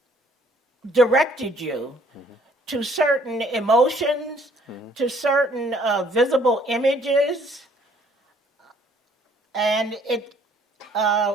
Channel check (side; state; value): both; normal; correlation 0.61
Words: directed you to certain emotions, to certain visible images, and it